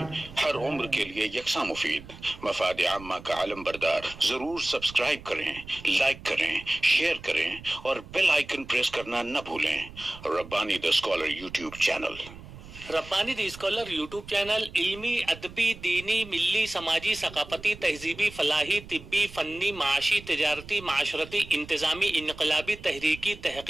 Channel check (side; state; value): right; noise; rumble, 17 dB below the sound